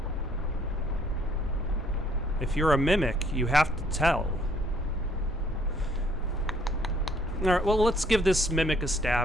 If you're a mimic, you have to tell. Alright, well, let's give this mimic a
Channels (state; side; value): normal; both; correlation 0.63